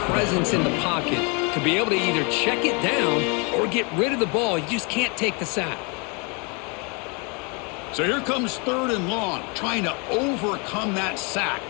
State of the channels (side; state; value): right; quieter; 32.6 dB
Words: presence in the pocket to be able to either check it down or get rid of the ball. You just can't take the sack. So here comes third and long, trying to overcome that sack.